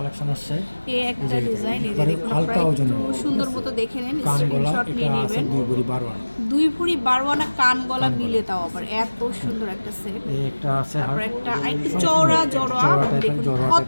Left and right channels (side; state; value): both; inverted; correlation -1.00